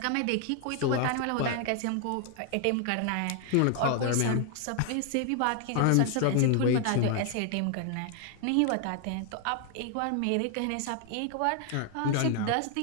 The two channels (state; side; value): different; both; correlation 0.00